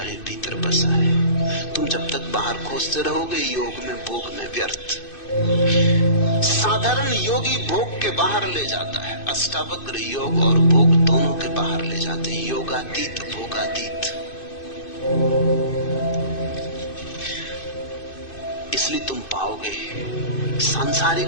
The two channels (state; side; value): late; right; 2.6 ms